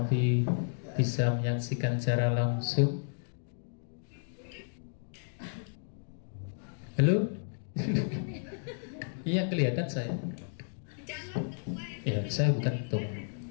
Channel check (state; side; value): silent; right; digital silence